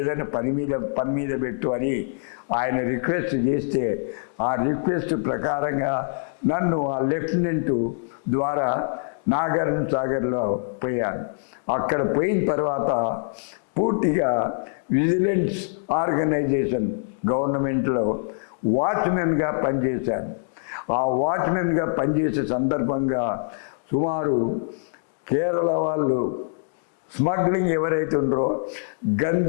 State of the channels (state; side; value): silent; right; digital silence